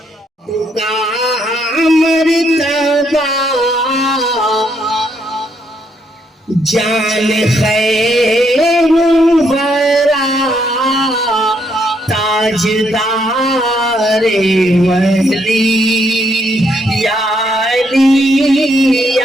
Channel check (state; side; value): normal; both; correlation 0.73